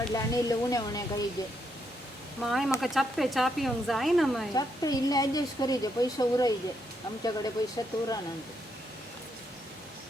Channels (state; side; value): normal; both; correlation 0.77